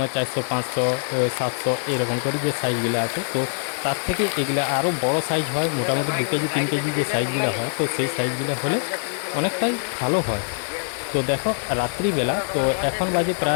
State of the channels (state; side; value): silent; right; 63 dB below the other